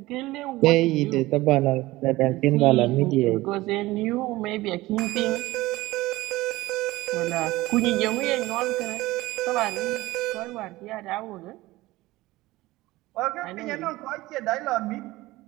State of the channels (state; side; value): quieter; left; 18.8 dB